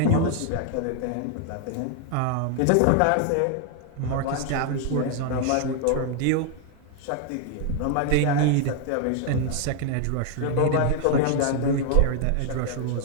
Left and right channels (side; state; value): both; different; correlation 0.00